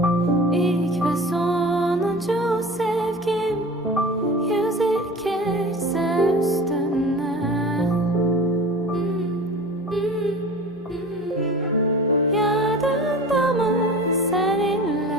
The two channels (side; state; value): both; normal; correlation 0.37